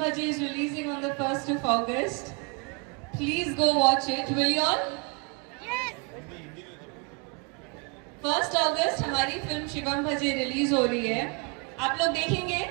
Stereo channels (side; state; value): left; quieter; 32.9 dB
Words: Bhaje is releasing on the 1st of August. Please go watch it. Will you all? Yes. 1st August हमारी फिल्म शिवम भजे रिलीज हो रही है. आप लोग देखेंगे?